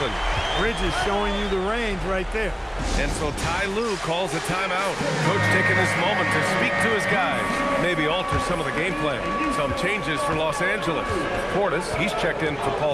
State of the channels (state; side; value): identical; both; correlation 1.00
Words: Bridges showing you the range right there. And so Ty Lue calls a timeout. Coach taking this moment to speak to his guys. Maybe alter some of the game plan. Some changes for Los Angeles. Portis, he's checked in for